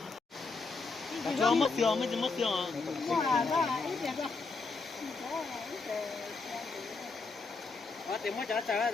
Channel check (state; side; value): quieter; right; 4.1 dB